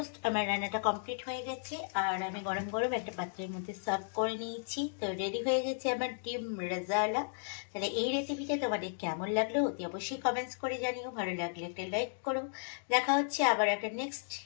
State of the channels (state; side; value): silent; right; digital silence